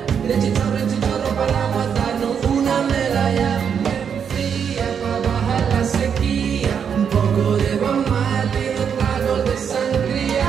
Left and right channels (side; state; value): left; quieter; 7.4 dB